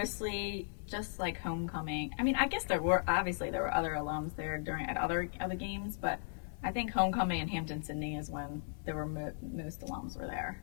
just like homecoming. I mean, I guess there were other alums there at other games, but I think homecoming in Hampton-Sydney is when there were most alums were there.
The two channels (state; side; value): silent; right; digital silence